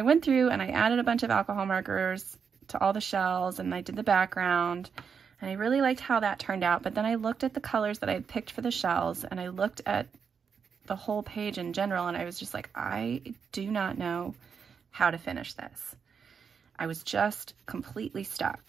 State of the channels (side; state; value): left; quieter; 6.4 dB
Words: went through and I added a bunch of alcohol markers to all the shells, and I did the background, and I really liked how that turned out. But then I looked at the colors that I had picked for the shells, and I looked at the whole page in general, and I was just like, I do not know how to finish this. I was just completely